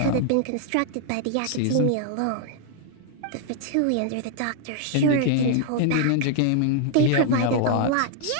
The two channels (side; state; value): both; different; correlation 0.00